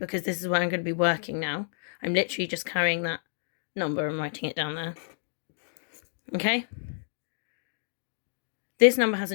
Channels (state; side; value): silent; right; digital silence